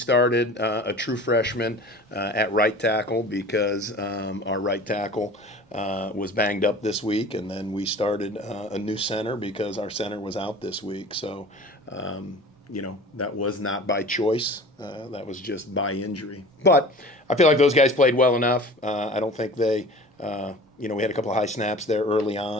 a true freshman at right tackle because our right tackle was banged up this week, and then we started a new center because our center was out this week. So. That was not by choice. That was just by injury. But I feel like those guys played well enough. I don't think they, we had a couple of high snaps there early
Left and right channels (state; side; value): normal; both; correlation 0.41